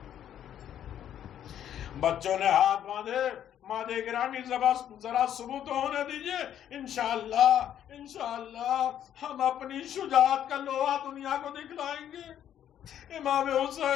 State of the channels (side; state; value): right; quieter; 10.3 dB